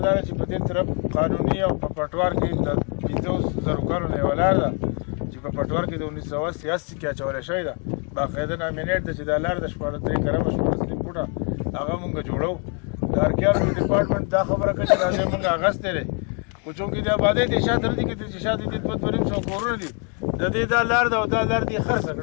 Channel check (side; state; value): right; quieter; 37.9 dB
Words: دا ده چې په دې طرف قانوني او په پټوار کې د 500,000 کالو نه یوه لار ده چې په پټوار کې د 1983 کې اچولی شوې ده. باقاعده نامینېټ ده چې دا لار د 3 کرمه 14 فوټه هغه مونږ جوړو. د ارکیالوجي ډپارټمنټ دا خبره کوي چې دا ځای مونږ اخیستی دی، خو چونکې د آبادۍ د شاته نه دي کې چې شاته دې 200 کورونه دي، د دې دا لار ده او دا لار دې خرڅه